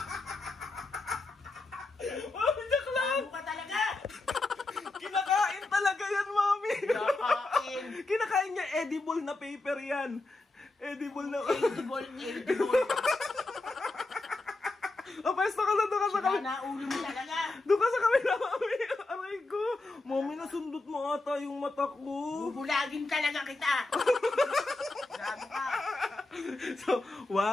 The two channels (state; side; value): quieter; right; 3.1 dB